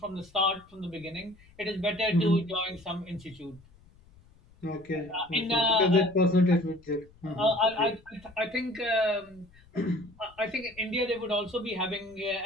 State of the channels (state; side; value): noise; left; rumble, 27 dB below the sound